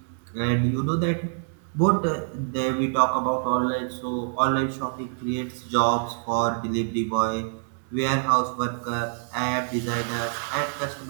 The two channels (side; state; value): left; silent; 61 dB below the other